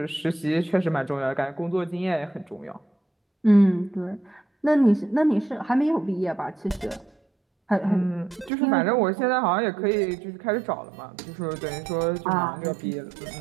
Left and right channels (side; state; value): left; drops out; at 8.5 s